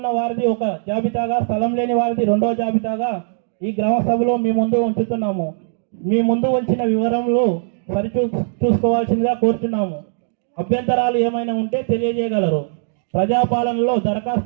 వారిది ఒక జాబితాగా, స్థలం లేని వారిది 2వ జాబితాగా ఈ గ్రామ సభలో మీ ముందు ఉంచుతున్నాము. మీ ముందు ఉంచిన వివరములు చూసుకోవాల్సిందిగా కోరుచున్నాము. అభ్యంతరాలు ఏమైనా ఉంటే తెలియజేయగలరు. ప్రజాపాలనలో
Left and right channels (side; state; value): left; silent; digital silence